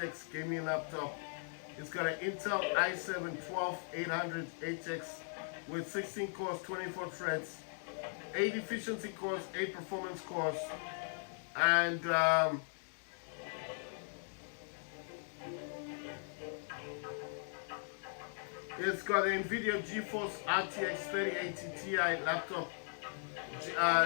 gaming laptop. It's got an Intel i7-12800HX with 16 cores, 24 threads, 8 efficiency cores, 8 performance cores, and it's got an NVIDIA GeForce RTX 3080 Ti laptop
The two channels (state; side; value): silent; right; digital silence